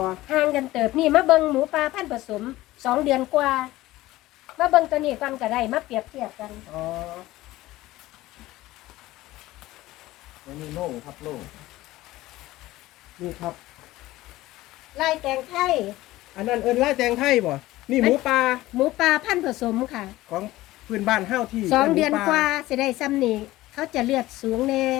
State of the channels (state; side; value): quieter; right; 17.2 dB